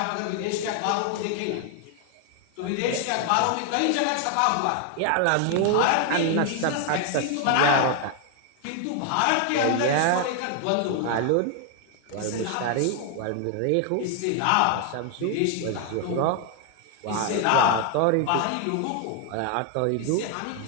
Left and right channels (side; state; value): both; different; correlation 0.00